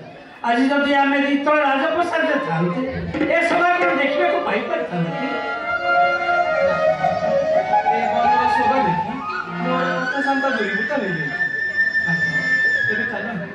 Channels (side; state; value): both; identical; correlation 1.00